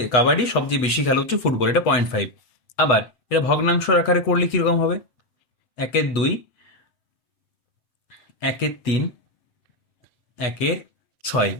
কাবাডি, সবচেয়ে বেশি খেলা হচ্ছে ফুটবল, এটা 0.5। আবার এটা ভগ্নাংশ আকারে করলে কিরকম হবে, 1/2, 1/3, 1/6,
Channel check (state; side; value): late; right; 8.2 ms